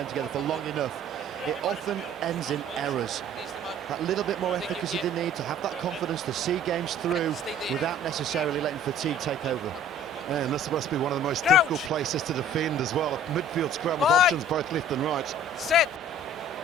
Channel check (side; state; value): both; normal; correlation 0.51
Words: together for long enough. It often ends in errors. That little bit more efficacy they need to have that confidence to see games through without necessarily letting fatigue take over. And this must be one of the most difficult places to defend as well. A midfield scrum with options both left and right. Set.